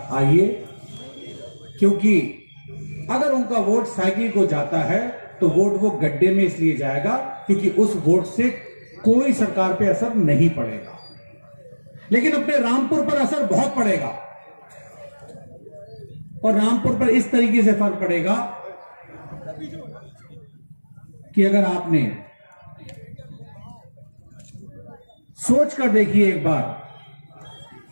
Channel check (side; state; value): both; inverted; correlation -1.00